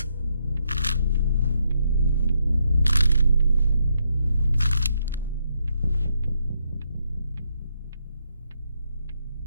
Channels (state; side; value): inverted; both; correlation -0.77